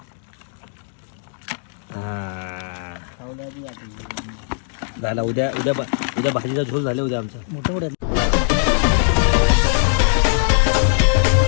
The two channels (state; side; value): silent; right; digital silence